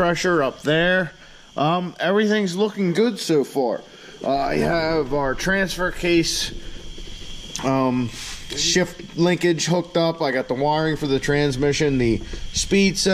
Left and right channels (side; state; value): both; identical; correlation 1.00